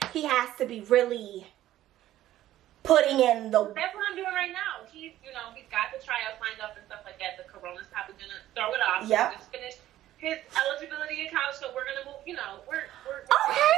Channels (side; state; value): left; quieter; 13.6 dB